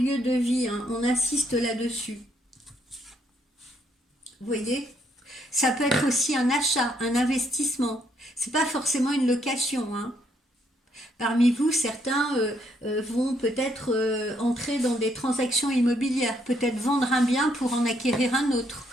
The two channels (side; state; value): both; normal; correlation 0.72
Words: de vie, hein, on insiste là-dessus. Vous voyez? Ça peut être aussi un achat, un investissement. C'est pas forcément une location, hein. Parmi vous, certains vont peut-être entrer dans des transactions immobilières, peut-être vendre un bien pour en acquérir un autre,